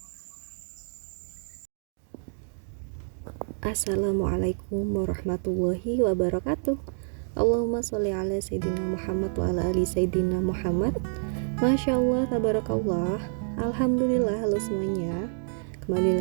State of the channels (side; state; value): left; silent; digital silence